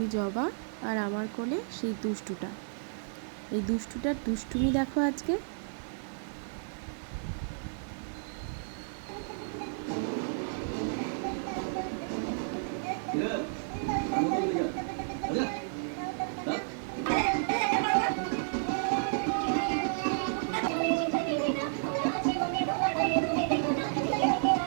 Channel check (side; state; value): left; silent; digital silence